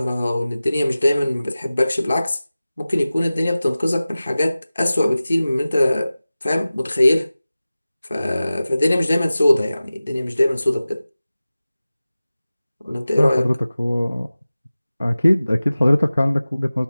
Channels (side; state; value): both; inverted; correlation -0.96